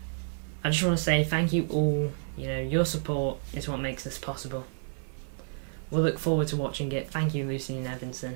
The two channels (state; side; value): silent; left; 58 dB below the other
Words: I just want to say thank you all. You know, your support is what makes this possible. We'll look forward to watching it. Thank you, Lucy and